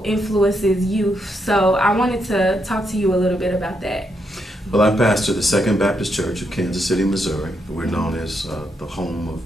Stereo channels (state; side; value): normal; both; correlation 0.80